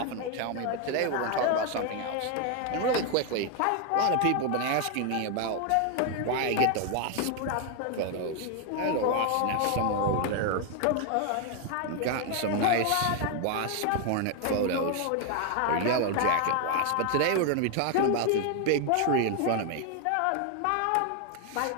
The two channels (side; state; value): both; different; correlation 0.01